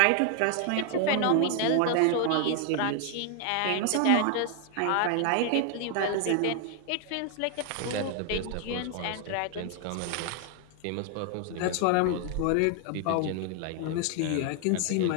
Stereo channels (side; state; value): both; different; correlation 0.00